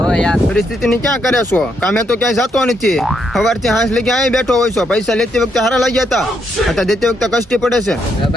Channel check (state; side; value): normal; both; correlation 0.77